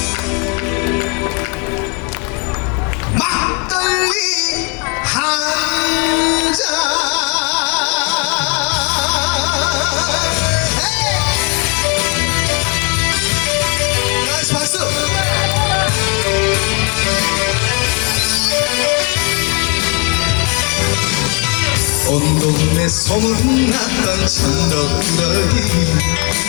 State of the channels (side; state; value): right; quieter; 33.9 dB